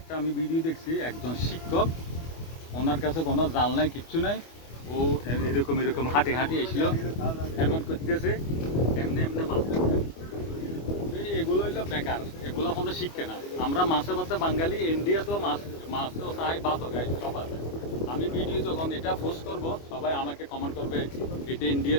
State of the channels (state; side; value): late; right; 25 ms